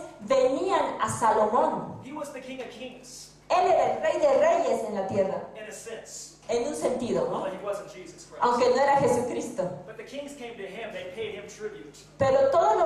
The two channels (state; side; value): identical; both; correlation 1.00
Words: venían a Salomón. He was the king of kings, Él era el rey de reyes en la tierra, in a sense. en un sentido, ¿no? Although he wasn't Jesus Christ. Aunque no era Jesucristo. But the kings came to him, they paid him tribute. Pero todos